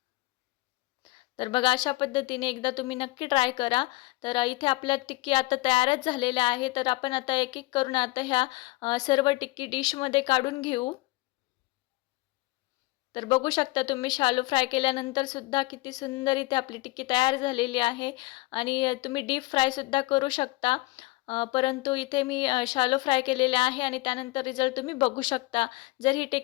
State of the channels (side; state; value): right; quieter; 21.9 dB